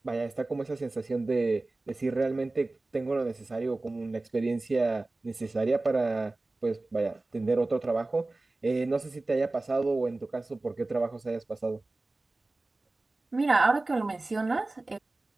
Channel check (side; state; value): left; quieter; 3.1 dB